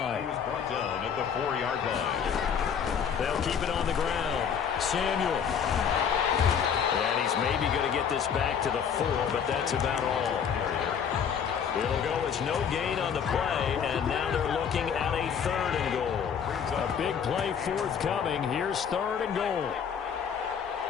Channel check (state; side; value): quieter; right; 7.4 dB